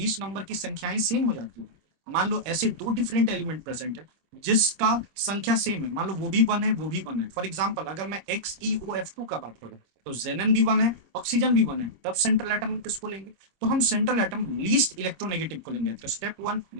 नंबर की संख्याएं सेम हो जाती है, मान लो ऐसे दो डिफरेंट एलिमेंट प्रेजेंट है जिसका संख्या सेम है, मान लो वो भी वन है वो भी वन है। फॉर एग्जाम्पल अगर मैं XeOF2 का बात करूं, तो जेनन भी वन है, ऑक्सीजन भी वन है, तब सेंट्रल एटम किसको लेंगे? तो हम सेंट्रल एटम लीस्ट इलेक्ट्रोनेगेटिव को लेंगे। तो स्टेप वन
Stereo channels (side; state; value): left; late; 26 ms